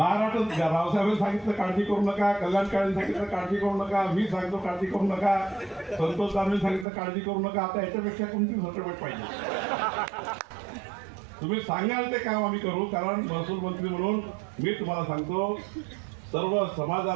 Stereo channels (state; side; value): drops out; left; at 6.9 s